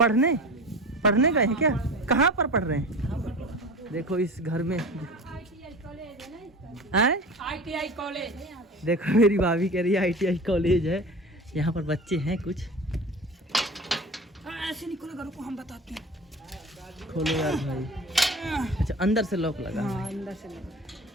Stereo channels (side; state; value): both; normal; correlation 0.35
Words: पढ़ने गए हैं क्या? कहाँ पर पढ़ रहे हैं? देखो इस घर में ITI कॉलेज। देखो मेरी भाभी कह रही है ITI कॉलेज है। यहाँ पर बच्चे हैं कुछ। ऐसे नहीं खोलेगा, रुको हम बताते हैं। खोलो यार भाई। अच्छा अंदर से लॉक लगा। हाँ, अंदर से लगा।